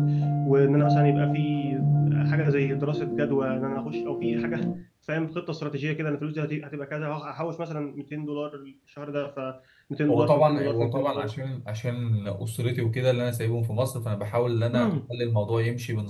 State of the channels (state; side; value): identical; both; correlation 1.00